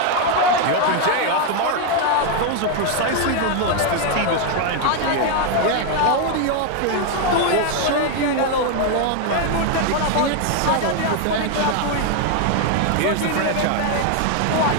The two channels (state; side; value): different; both; correlation 0.01